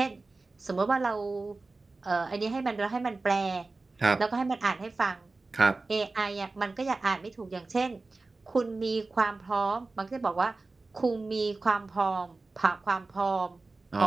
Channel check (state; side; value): quieter; left; 3.5 dB